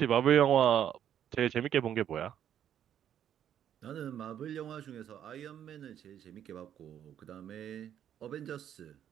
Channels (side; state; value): left; quieter; 9.9 dB